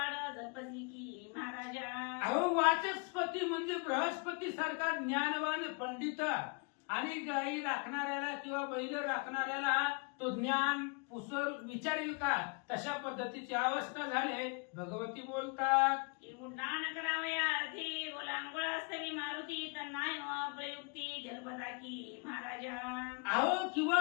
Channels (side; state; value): right; quieter; 34.3 dB